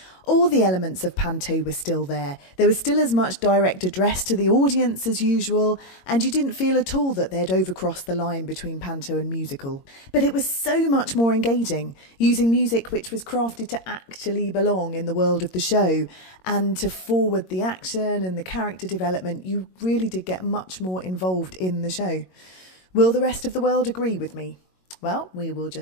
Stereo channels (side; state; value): right; late; 22 ms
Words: All the elements of Panto were still there. There was still as much direct address to the audience as usual, and you didn't feel at all that they'd overcrossed the line between Panto and musical. But it was so much more engaging, using music which was crafted to actually belong in the world of the show, and to forward the action and the character development. You really did get much more involved in the show. Will the rest of the world agree with me? Well, we will